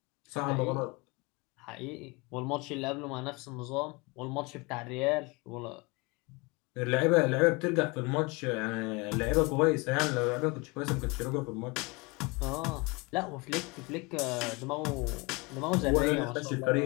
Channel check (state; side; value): quieter; right; 26.8 dB